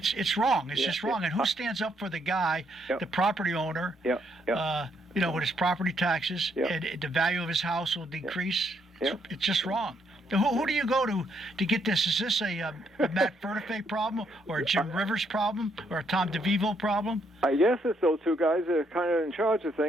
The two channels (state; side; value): normal; both; correlation 0.73